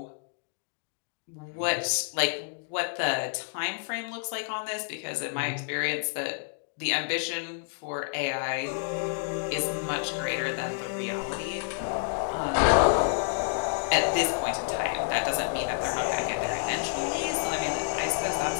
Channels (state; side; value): silent; right; digital silence